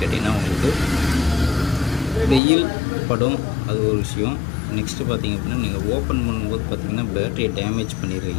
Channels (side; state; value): right; drops out; at 2.4 s